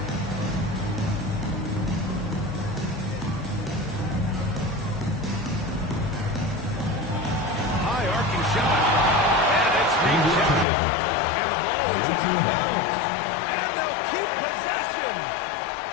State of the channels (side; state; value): right; drops out; at 10.7 s